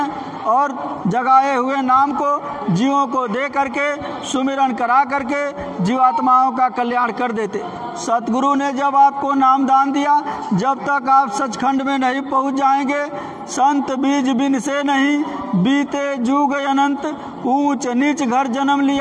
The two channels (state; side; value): identical; both; correlation 1.00